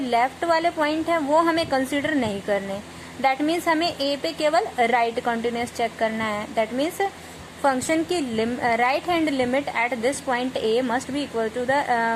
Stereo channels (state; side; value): identical; both; correlation 1.00